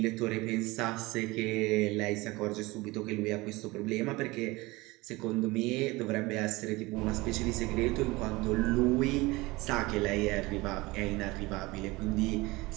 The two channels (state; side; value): quieter; left; 22.0 dB